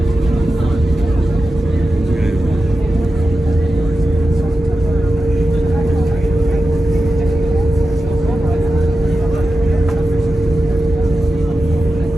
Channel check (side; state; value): both; normal; correlation 0.92